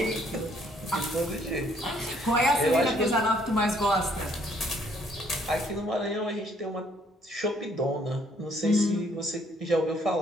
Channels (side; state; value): both; normal; correlation 0.65